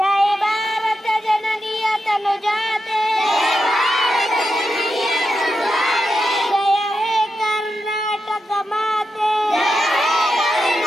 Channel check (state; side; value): normal; both; correlation 0.87